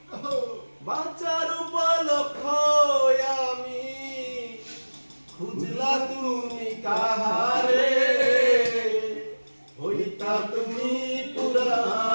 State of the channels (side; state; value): both; inverted; correlation -1.00